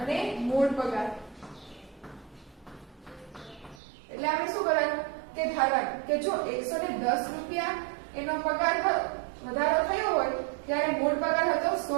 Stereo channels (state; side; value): drops out; left; at 3.8 s